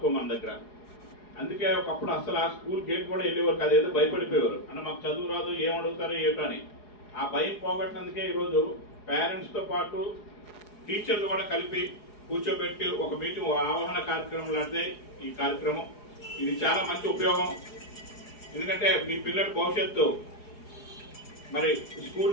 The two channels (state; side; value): late; right; 4.8 ms